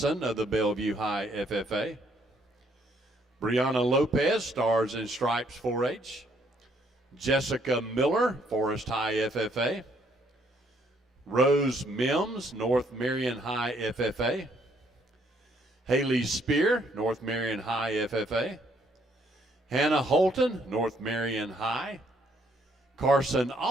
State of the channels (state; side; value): normal; both; correlation 0.68